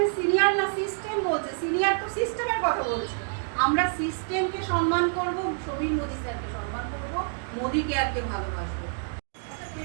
সিনিয়র না সিস্টেম বলছে, সিনিয়র তো সিস্টেমের কথা বলছে। আমরা সিস্টেমকে সম্মান করব, সমীর মোদি স্যারকে সম্মান করব, মোদি কেয়ারকে ভালোবাসবো। আচ্ছা, তুমি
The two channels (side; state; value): left; silent; digital silence